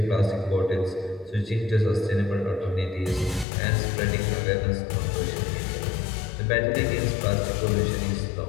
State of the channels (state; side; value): drops out; right; at 3.5 s